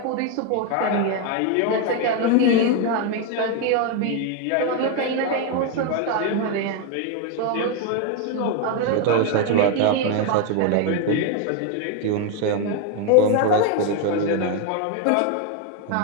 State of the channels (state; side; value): different; both; correlation 0.01